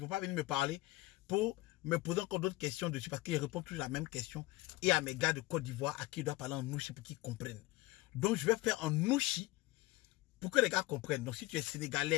venir me parler pour me poser encore d'autres questions dessus parce qu'ils répondent toujours la même question. Et à mes gars de Côte d'Ivoire à qui ils doivent parler en Nushi pour qu'ils comprennent. Donc, je vais faire en Nushi pour que les gars comprennent. Donc, si tu es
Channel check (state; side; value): quieter; right; 19.3 dB